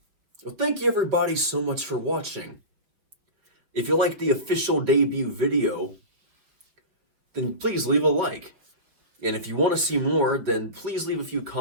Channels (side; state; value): left; late; 5.7 ms